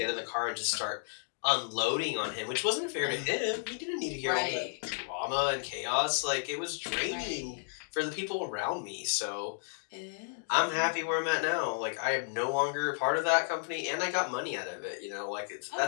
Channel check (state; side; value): silent; right; digital silence